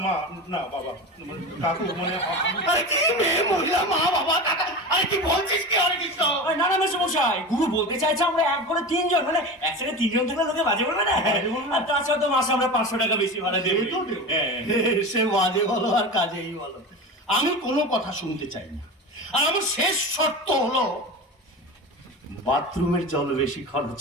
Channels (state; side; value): normal; both; correlation 0.27